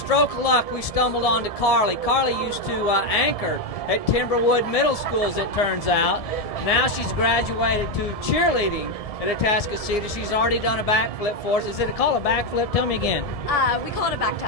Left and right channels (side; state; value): right; late; 1.7 ms